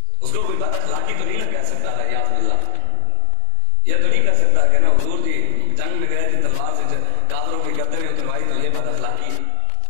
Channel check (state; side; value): different; both; correlation 0.00